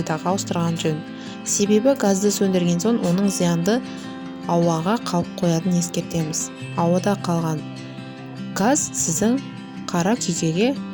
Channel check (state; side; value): identical; both; correlation 1.00